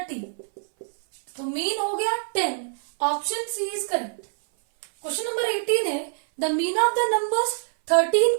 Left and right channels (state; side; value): silent; left; 58 dB below the other